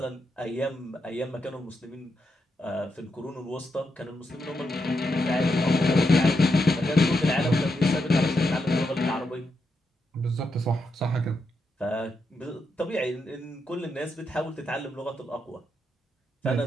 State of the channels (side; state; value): both; normal; correlation 0.84